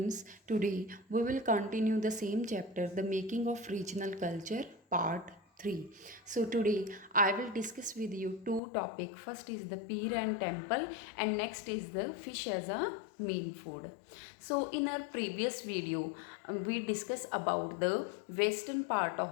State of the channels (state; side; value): drops out; right; at 8.6 s